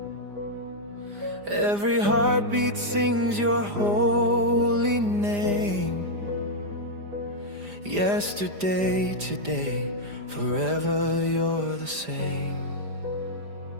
Every heartbeat sings your holy name. Yesterday, today, forever you're the same.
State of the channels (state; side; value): late; left; 4.9 ms